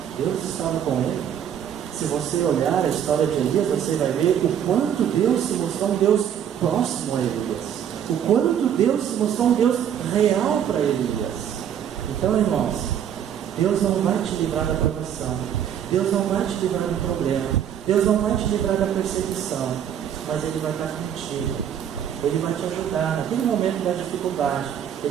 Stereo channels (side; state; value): left; quieter; 9.3 dB